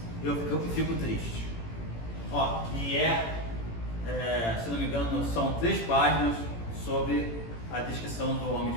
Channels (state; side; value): late; right; 18 ms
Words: eu fico triste. Ó, e se não me engano, são 3 páginas sobre a descrição do homem